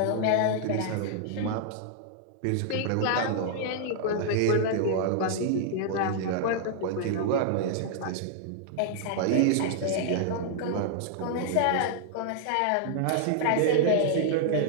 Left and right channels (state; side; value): different; both; correlation -0.01